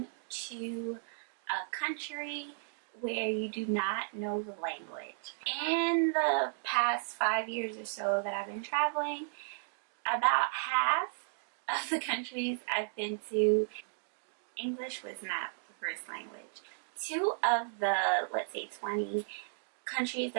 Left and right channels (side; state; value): left; silent; digital silence